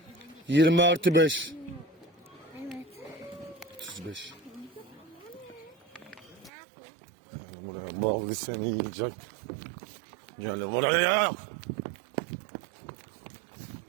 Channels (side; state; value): left; drops out; at 6.5 s